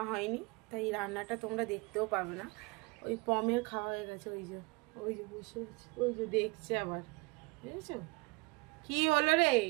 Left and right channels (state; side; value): quieter; left; 26.8 dB